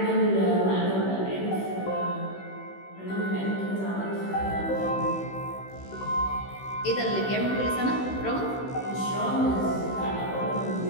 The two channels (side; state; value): right; late; 16 ms